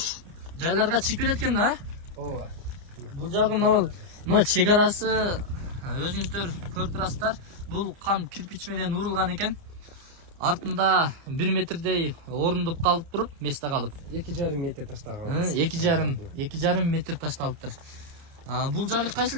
жайларга чыгып кетет экен да. Ооба. Бул жагы могул чек арасы өзүңүздөр көрүп турасыздар. Бул кам кирпич менен урулган экен. Артында 1 метрдей орундуп калып туруп, месте калып. 2,5 метр таштаган. 2,5 метр ташталыптыр. Бул жагы кайсыл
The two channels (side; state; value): left; late; 29 ms